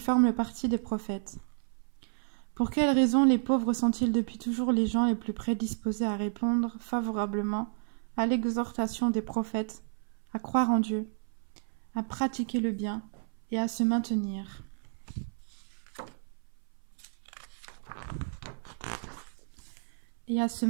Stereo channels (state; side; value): silent; left; 57 dB below the other